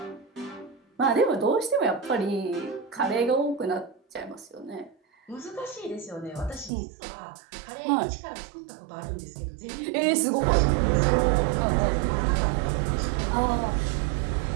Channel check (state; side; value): drops out; left; at 6.7 s